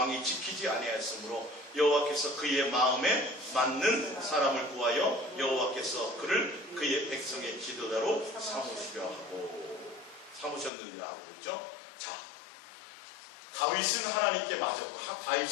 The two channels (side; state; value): right; drops out; at 10.7 s